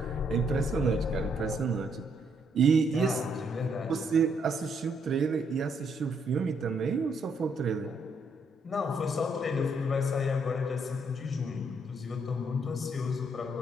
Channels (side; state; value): both; normal; correlation 0.72